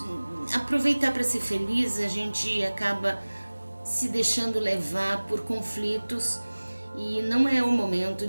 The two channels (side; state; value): both; inverted; correlation -1.00